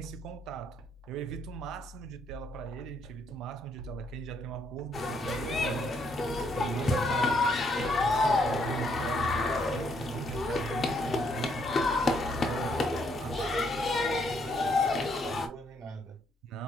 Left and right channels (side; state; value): both; normal; correlation 0.71